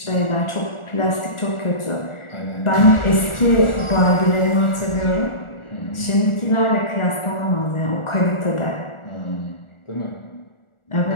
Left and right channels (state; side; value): late; right; 1.4 ms